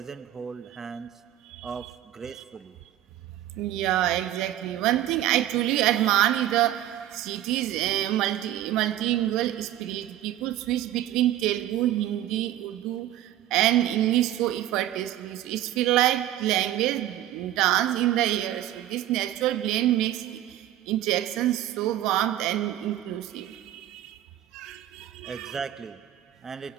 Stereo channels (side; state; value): left; quieter; 12.9 dB